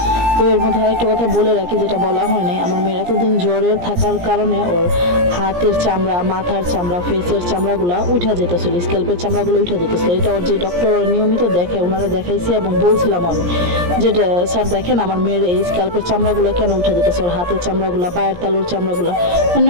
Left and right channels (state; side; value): late; left; 17 ms